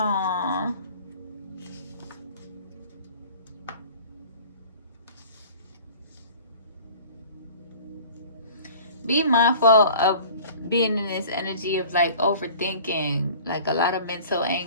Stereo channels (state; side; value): inverted; both; correlation -0.45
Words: Be mindful of being in this energy of like overthinking, like a lot of mental